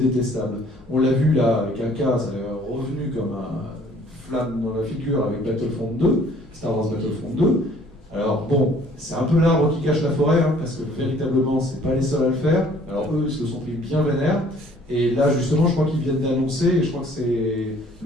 On l'a vu là avec un cas, ça est revenu comme un flamme dans la figure avec Battlefront 2, Star Wars Battlefront 2. Alors bon, c'est un peu l'arbre qui cache la forêt, hein, parce que véritablement, c'est pas les seuls à le faire. Alors eux, ils se sont pris bien vénère, et là justement, je crois qu'ils viennent d'annoncer, et je crois que c'est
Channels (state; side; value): normal; both; correlation 0.57